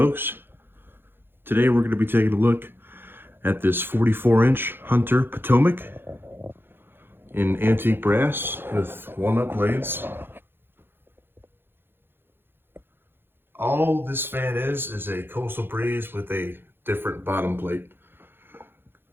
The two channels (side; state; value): left; late; 0.10 ms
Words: today we're going to be taking a look at this 44-inch Hunter Potomac in antique brass with walnut blades. All this fan is a Coastal Breeze with a different bottom plate.